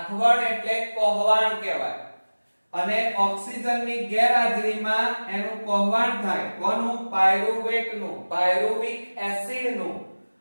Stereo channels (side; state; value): both; inverted; correlation -1.00